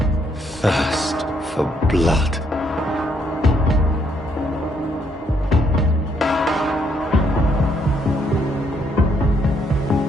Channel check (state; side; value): normal; both; correlation 0.72